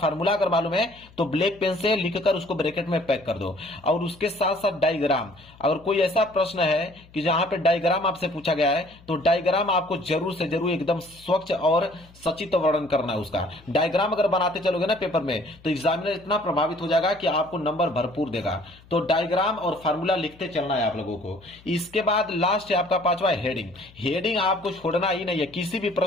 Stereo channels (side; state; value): left; noise; hum, 25 dB below the sound